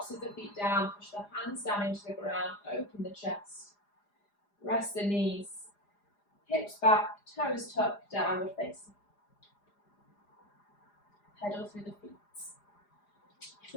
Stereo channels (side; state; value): right; late; 4.9 ms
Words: of the feet down, push the hands down into the ground, open the chest. Rest the knees, hips back, toes tucked, downward facing. Pedal through the feet.